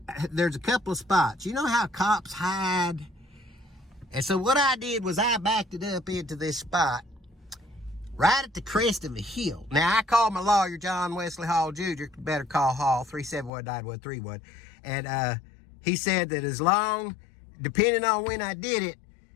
there's a couple of spots. You know how cops hide? And so what I did was I backed it up into this spot right at the crest of a hill. Now, I called my lawyer, John Wesley Hall Jr., better call Hall, 371-9131. And he said that depending on when I did it,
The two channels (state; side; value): drops out; right; at 13.5 s